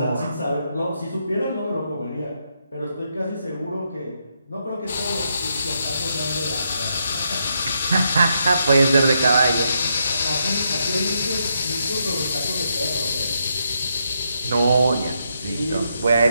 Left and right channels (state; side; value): inverted; both; correlation -0.79